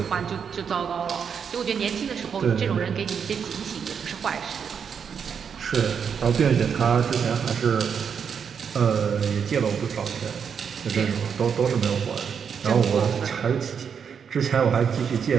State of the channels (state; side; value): quieter; left; 7.0 dB